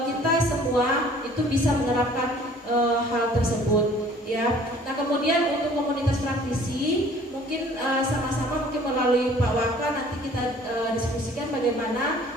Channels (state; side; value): normal; both; correlation 0.53